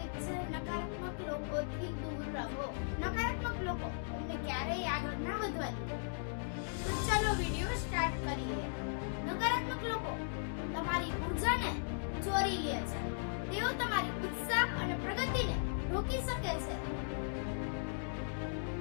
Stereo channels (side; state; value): right; silent; digital silence